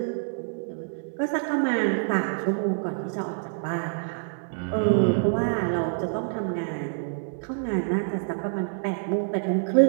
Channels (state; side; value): silent; left; digital silence